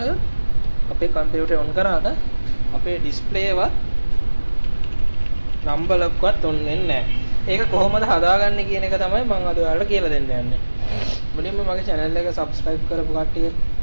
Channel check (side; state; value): both; inverted; correlation -1.00